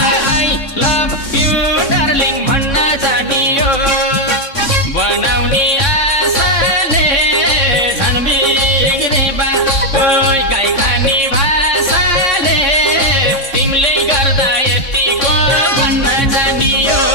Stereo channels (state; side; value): late; right; 3.6 ms